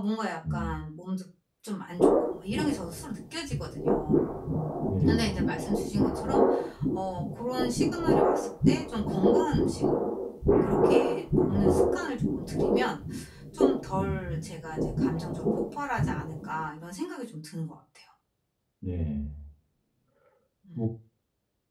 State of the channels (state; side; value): identical; both; correlation 1.00